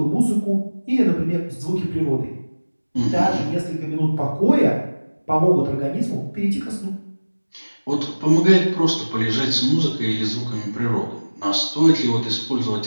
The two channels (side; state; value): both; inverted; correlation -1.00